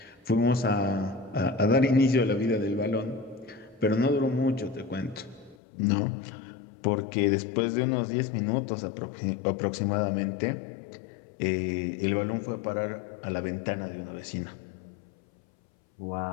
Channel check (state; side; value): drops out; right; at 5.6 s